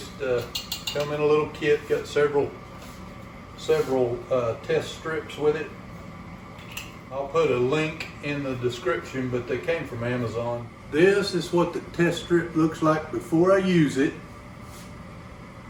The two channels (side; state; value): both; identical; correlation 1.00